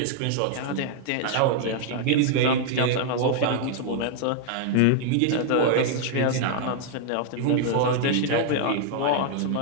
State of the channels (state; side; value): different; both; correlation 0.00